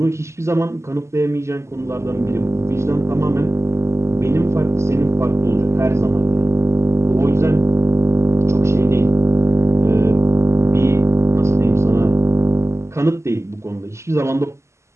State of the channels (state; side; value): late; left; 0.13 ms